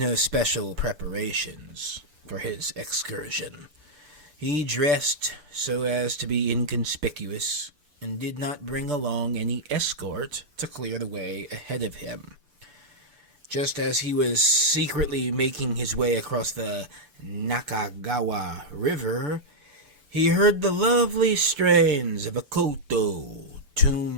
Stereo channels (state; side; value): late; left; 6.8 ms